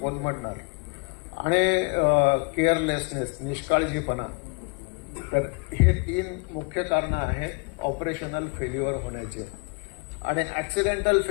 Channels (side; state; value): right; quieter; 32.7 dB